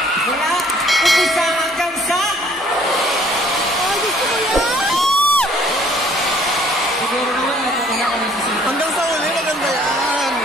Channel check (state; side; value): normal; both; correlation 0.58